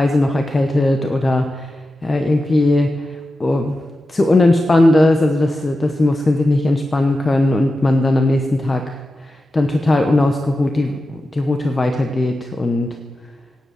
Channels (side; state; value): both; normal; correlation 0.92